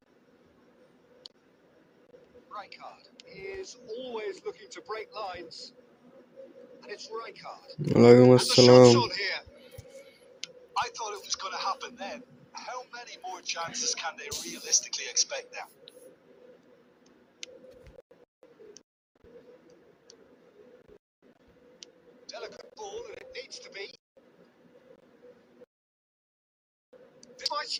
Rijkaard is always looking to break lines. And it's Rijkaard. ওয়ালাইকুম And the shot's আসসালাম on here. I thought it was going to happen then. How many more chances can they realistically expect now? Delicate ball, and it needs to be. This might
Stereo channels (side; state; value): both; identical; correlation 1.00